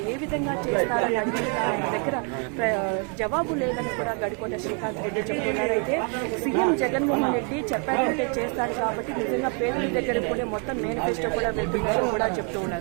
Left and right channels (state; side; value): quieter; left; 38.8 dB